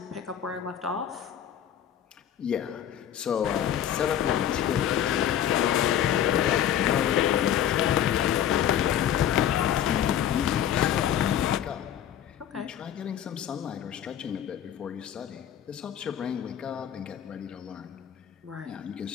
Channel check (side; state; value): right; quieter; 10.2 dB